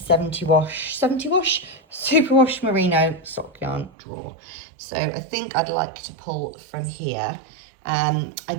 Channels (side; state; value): left; drops out; at 3.9 s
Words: wash superwash merino sock yarn drawer. So I think I'd like to pull from here. I